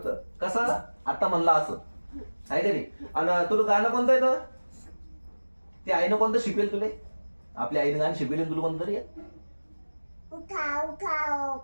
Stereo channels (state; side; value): inverted; both; correlation -1.00